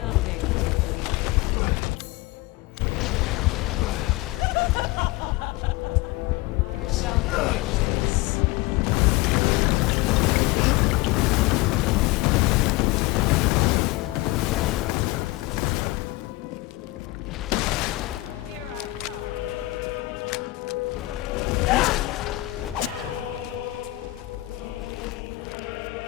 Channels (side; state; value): right; quieter; 20.0 dB